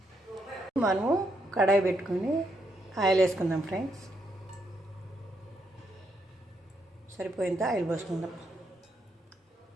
మనము కడాయి పెట్టుకొని ఆయిల్ వేసుకుందాం ఫ్రెండ్స్. సరిపోయేంత ఆయిల్ పోసుకుందాం.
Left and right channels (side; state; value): both; normal; correlation 0.77